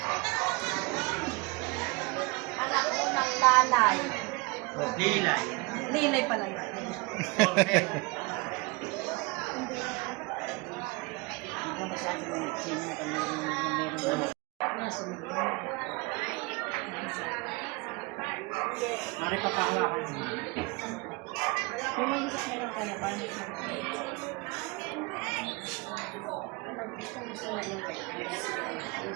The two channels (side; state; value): left; quieter; 26.5 dB